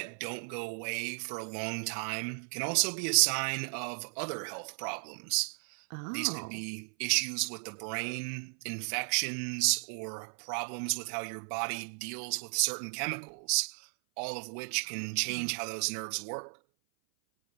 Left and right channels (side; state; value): left; silent; 55 dB below the other